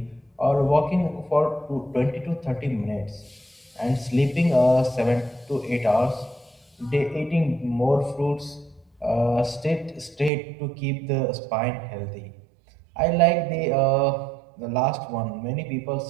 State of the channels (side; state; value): left; drops out; at 10.3 s